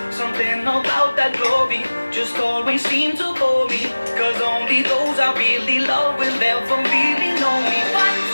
Something about that glory just always seemed to bore me, cause only those I really love will ever really know me.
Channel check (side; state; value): both; inverted; correlation -1.00